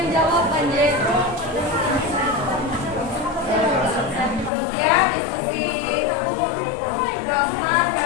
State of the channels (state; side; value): drops out; right; at 4.5 s